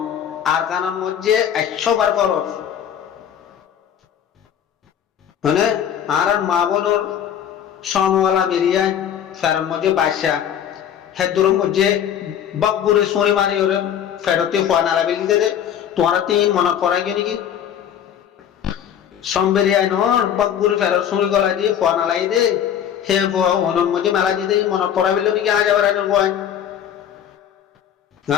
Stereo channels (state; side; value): quieter; right; 9.4 dB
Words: আর কানার মধ্যে 100 বার ফরজ মানে আর মা বোনর সমওয়ালা বেরিয়ে ফেরার মধ্যে বাদশা হেদুর মধ্যে বকবুরে সরি মারি ওরে ফেরতে হওয়া নালা বেলি দে তোমার তিন মনে পড়া গিয়ে নাকি সম্বেরিয়ায় নর বকবুরে ফেরত সরি গলা দিয়ে হওয়া নালাই দে হে হওয়া অনর মধ্যে মেলা দিয়ে দে মনে পড়া বেলি নাকি আজ আবার আইনের হয়